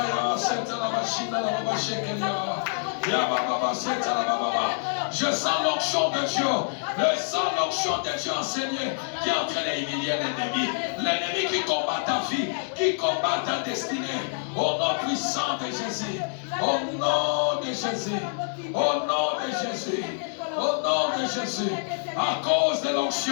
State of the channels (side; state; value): right; silent; digital silence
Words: Seta la Bashina la Baba Shekelia, Yababa Seta la Baba, Je sens l'onction de Dieu. Je sens l'onction de Dieu enseigné qui est en train d'humilier l'ennemi. L'ennemi qui combat ta vie, qui combat ta destinée. Au nom puissant de Jésus. Au nom de Jésus. Au nom de Jésus. Au nom de Jésus. À cause de